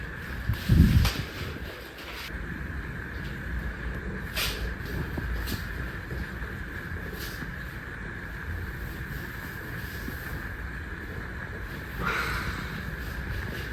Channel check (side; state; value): both; identical; correlation 1.00